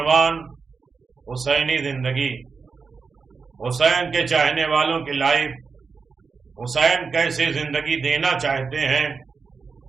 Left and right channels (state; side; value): quieter; left; 5.0 dB